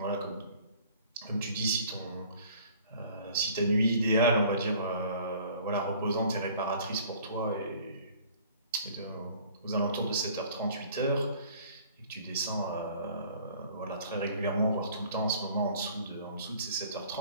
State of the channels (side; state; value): both; inverted; correlation -0.52